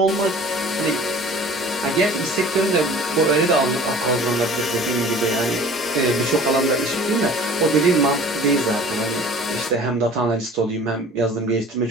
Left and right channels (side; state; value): both; normal; correlation 0.45